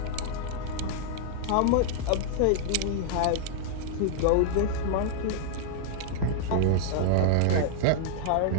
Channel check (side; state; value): both; different; correlation -0.01